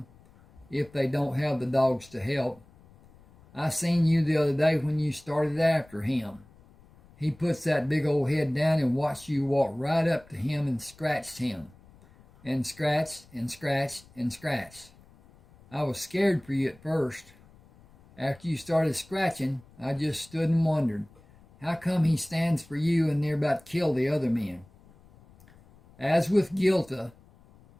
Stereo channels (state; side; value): noise; left; rumble, 26 dB below the sound